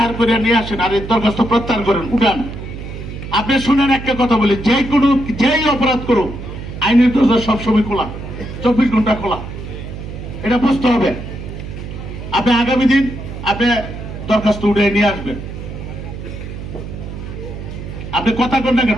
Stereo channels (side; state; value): right; noise; hum, 9 dB below the sound